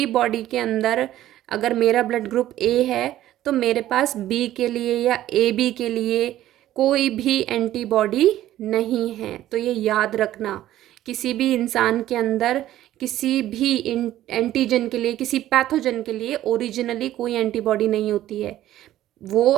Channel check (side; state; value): left; quieter; 13.5 dB